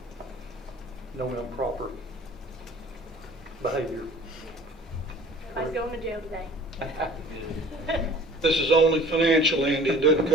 No improper behavior. Everybody's going to jail today. This is only financial, Andy. It doesn't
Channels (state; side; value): normal; both; correlation 0.48